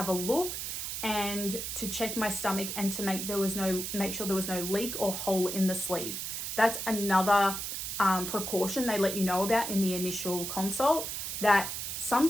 a look and to check my stomach and to make sure there was no leak or hole in the sleeve. That's another precaution they let you know about in the initial consult, that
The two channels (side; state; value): right; noise; hiss, 4 dB below the sound